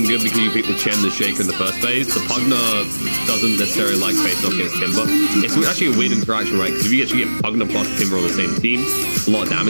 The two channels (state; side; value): inverted; both; correlation -1.00